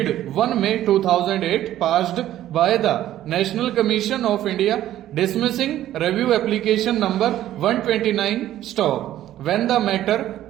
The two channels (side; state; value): left; quieter; 12.9 dB